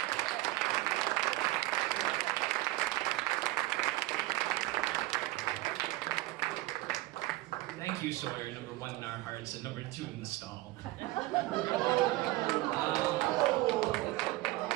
Thank you, Sawyer, number one in our hearts and number two in the stall.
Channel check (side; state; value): left; quieter; 18.7 dB